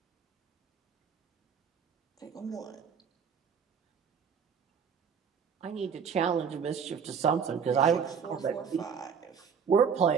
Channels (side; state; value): left; quieter; 6.7 dB